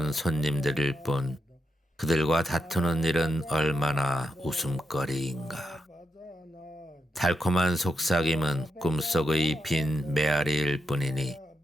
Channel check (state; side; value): normal; both; correlation 0.85